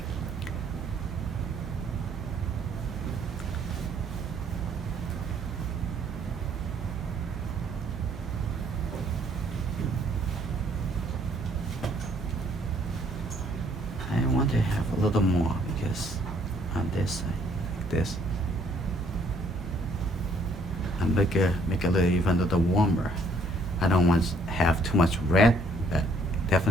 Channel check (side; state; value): both; normal; correlation 0.64